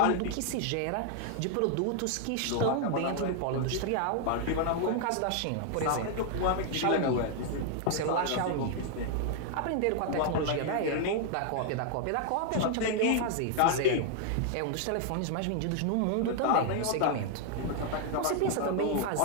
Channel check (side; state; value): both; different; correlation 0.00